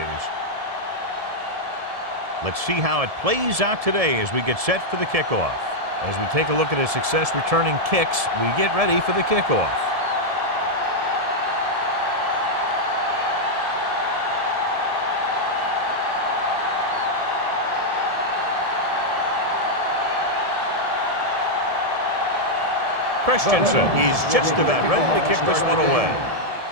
Let's see how it plays out today as we get set for the kickoff. As we take a look at his success returning kicks, we get ready for the kickoff. Christensen is just about ready to kick this one away.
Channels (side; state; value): left; late; 1.7 ms